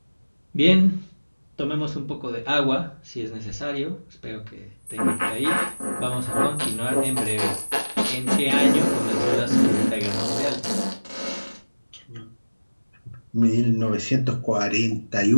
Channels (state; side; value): inverted; both; correlation -1.00